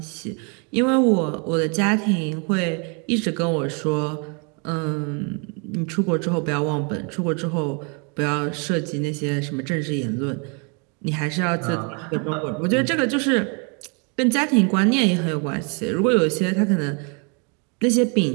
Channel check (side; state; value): left; quieter; 35.3 dB